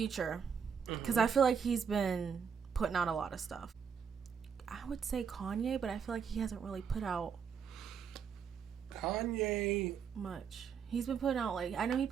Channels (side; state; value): left; quieter; 6.9 dB